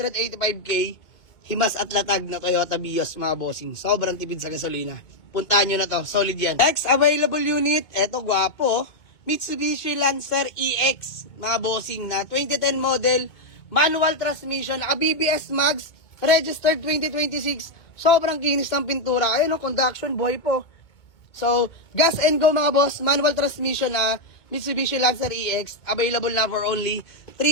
Himas at latag na Toyota Vios mga bossing. Sobrang tipid sa gasolina. Puntahan nyo na to, solid yan. Next available unit, eto gwapo. Mitsubishi Lancer EX mga bossing na 2010 model. manual transmission, naka BBS Mags, registered 2026, sobrang kinis ng pintura. Ayun, no, conduction, buhay po. So, gas and go mga boss, manual transmission na Mitsubishi Lancer EX, available na for only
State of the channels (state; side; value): late; right; 2.2 ms